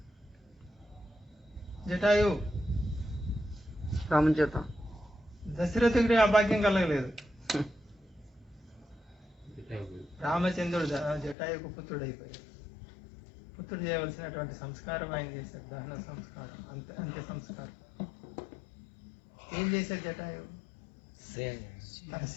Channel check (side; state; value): right; drops out; at 11.4 s